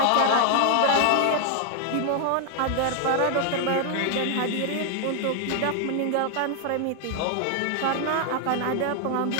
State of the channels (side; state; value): both; different; correlation 0.00